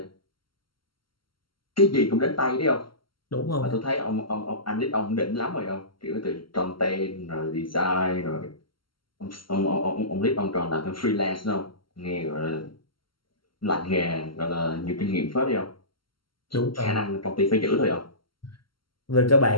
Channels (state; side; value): late; right; 0.73 ms